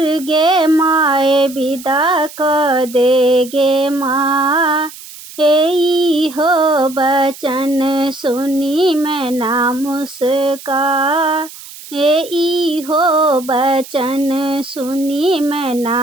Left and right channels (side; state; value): right; noise; hiss, 16 dB below the sound